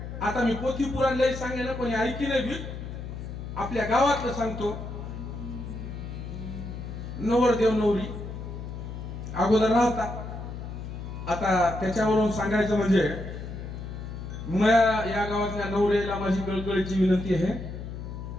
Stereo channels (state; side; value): noise; left; hum, 8 dB below the sound